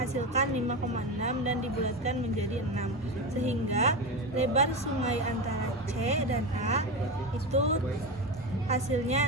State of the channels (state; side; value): normal; both; correlation 0.19